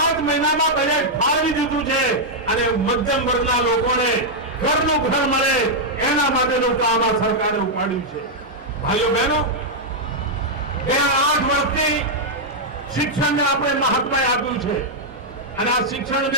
મહિનામાં બજેટ ફાળવી દીધું છે અને મધ્યમ વર્ગના લોકોને ઘરનું ઘર મળે એના માટેનું કામ આ સરકારે ઉપાડ્યું છે. ભાઈઓ બહેનો, ગયા 8 વર્ષથી શિક્ષણને આપણે મહત્વ આપ્યું છે અને આ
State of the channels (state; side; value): normal; both; correlation -0.04